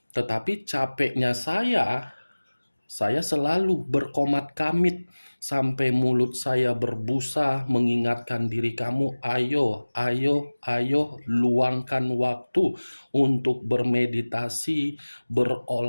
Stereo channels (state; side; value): inverted; both; correlation -1.00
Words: Tetapi capeknya saya selalu berkomat kamit sampai mulut saya berbusa mengingatkan diri kamu, ayo, ayo, ayo, luangkan waktu untuk bermeditasi,